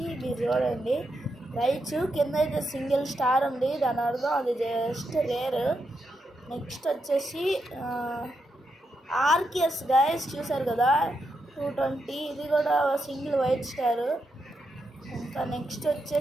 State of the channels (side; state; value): both; normal; correlation 0.83